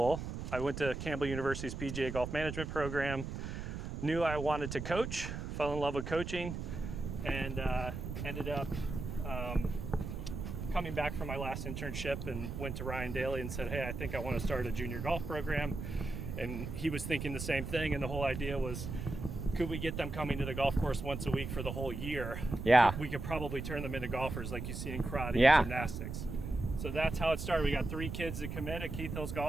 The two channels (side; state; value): right; noise; rumble, 6 dB below the sound